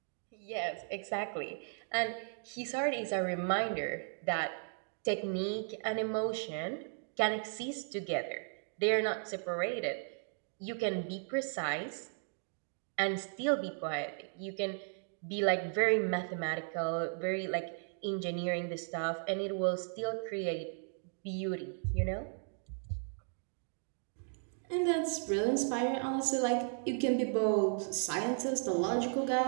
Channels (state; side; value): silent; left; 54 dB below the other